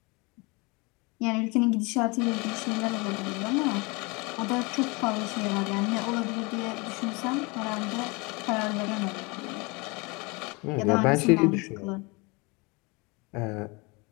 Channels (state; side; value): quieter; right; 27.8 dB